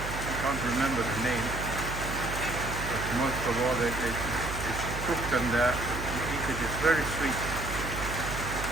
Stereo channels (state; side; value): noise; right; hum, 6 dB below the sound